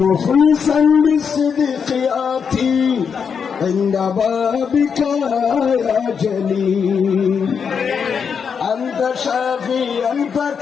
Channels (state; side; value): quieter; right; 6.5 dB